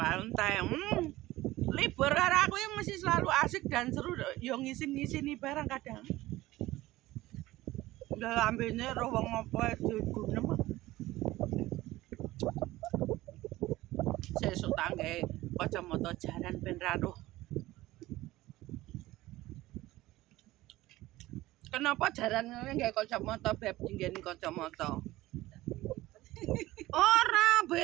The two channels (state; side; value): quieter; left; 17.3 dB